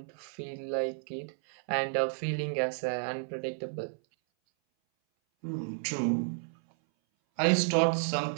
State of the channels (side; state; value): left; silent; 57 dB below the other